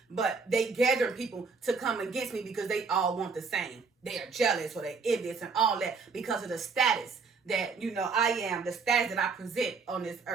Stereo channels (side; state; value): left; quieter; 4.8 dB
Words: but they gathering people to come against me because they all want the same. They are jealous or they envious and all that because of the status that, I am, the status that I present on this